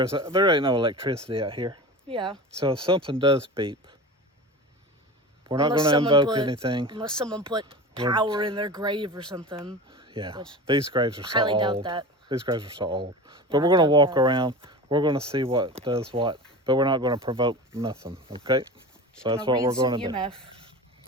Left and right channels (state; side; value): normal; both; correlation 0.31